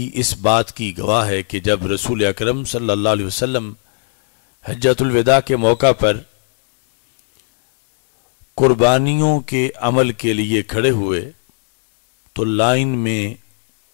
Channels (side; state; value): right; silent; 57 dB below the other